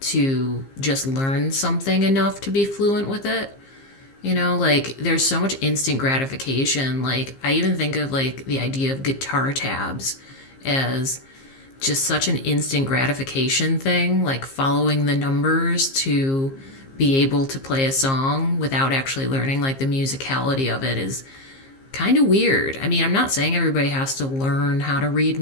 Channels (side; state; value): right; late; 15 ms